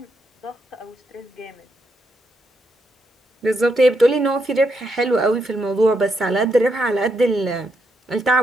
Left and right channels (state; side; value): normal; both; correlation 0.79